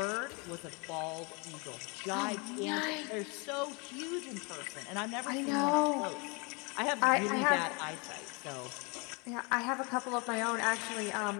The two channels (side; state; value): right; quieter; 31.1 dB